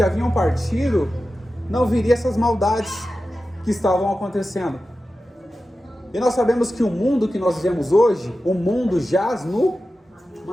haviam partido, não viriam essas maldades que estavam acontecendo. E nós sabemos que o mundo que nós vivemos hoje, o mundo jaz no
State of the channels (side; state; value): both; normal; correlation 0.93